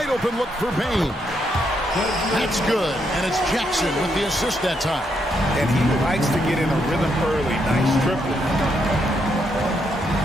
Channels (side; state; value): both; normal; correlation 0.77